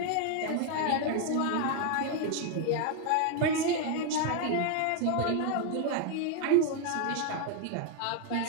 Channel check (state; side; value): different; both; correlation 0.00